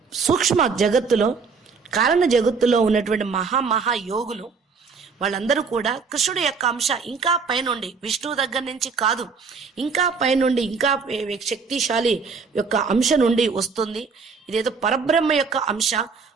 సూక్ష్మ జగత్తులో, కారణ జగత్తులో ఉన్నటువంటి మహా యోగులు వాళ్ళందరూ కూడా కృష్ణుడి యొక్క అంశ ఇంకా పైనుండి, విష్ణువు దగ్గర నుంచి కాదు, ఇంకా పైనుండి, ఇంకా శక్తిశాలి యొక్క అంశ నుండి వస్తుంది. ఇదేదో పరబ్రహ్మ యొక్క అంశ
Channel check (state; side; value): quieter; left; 5.1 dB